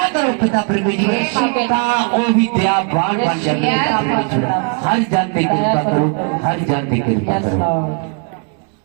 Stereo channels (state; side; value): quieter; left; 38.7 dB